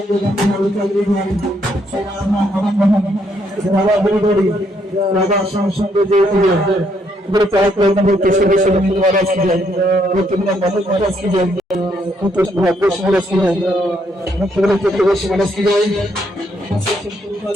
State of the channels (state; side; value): normal; both; correlation 0.73